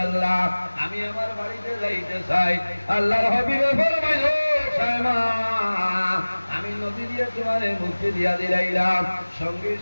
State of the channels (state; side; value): inverted; both; correlation -1.00